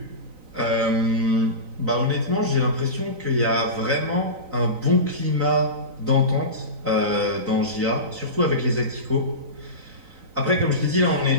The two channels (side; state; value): left; late; 3.9 ms